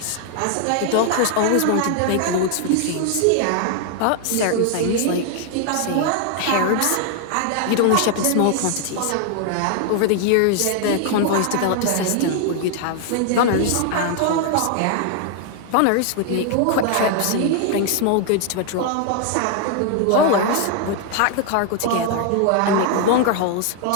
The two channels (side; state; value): both; different; correlation 0.00